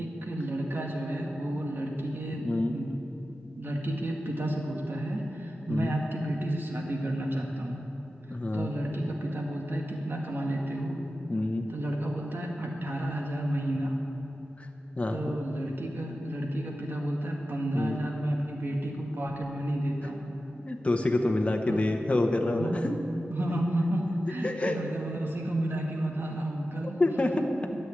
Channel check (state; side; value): normal; both; correlation 0.93